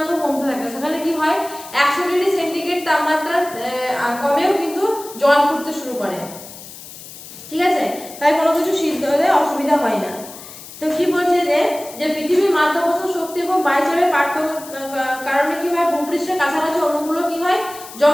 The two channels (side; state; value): left; noise; hiss, 15 dB below the sound